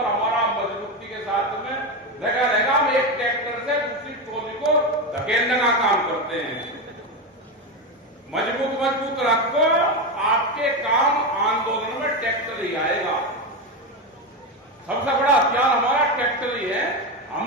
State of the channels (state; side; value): normal; both; correlation 0.14